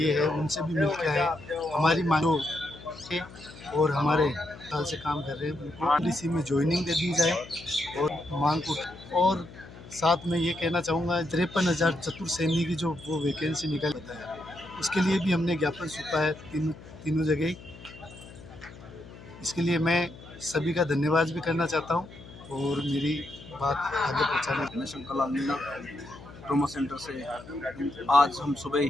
है उनसे भी मिल के आए। हमारी मांगों और हमारे साल से काम कर रहे हैं उनको पॉलिसी में ज्वाइनिंग दे दी जाए और मांग को, और साथ में ये कहना चाहूँगा 53,000 चतुर सैनिक की जो वो वैकेंसी निकाल बताया उसके लिए भी हमने ज्ञापन सौंपा है तीनों जगह। इसके लिए मैं सभी का धन्यवाद भी करना चाहता हूँ और मेरी बात आगे पहुँचाने। मैं शंकर लाल मीना ट्रोमा सेंटर से आज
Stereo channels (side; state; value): left; noise; hum, 17 dB below the sound